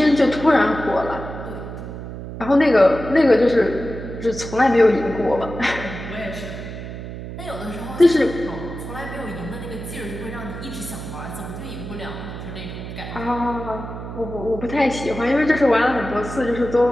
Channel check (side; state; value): right; noise; hum, 9 dB below the sound